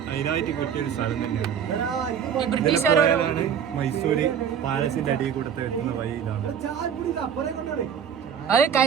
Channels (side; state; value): left; quieter; 8.0 dB